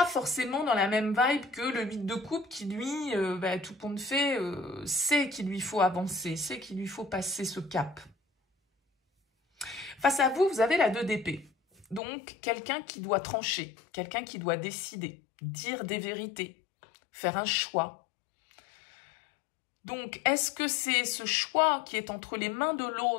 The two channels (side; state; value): right; drops out; at 12.0 s